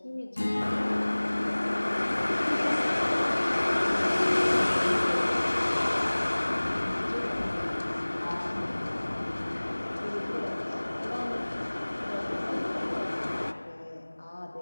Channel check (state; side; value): inverted; both; correlation -1.00